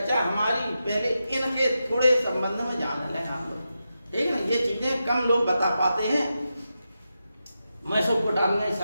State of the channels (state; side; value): inverted; both; correlation -0.89